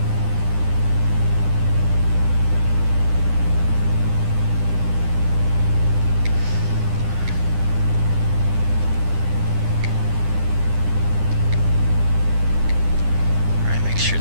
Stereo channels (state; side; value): late; left; 10 ms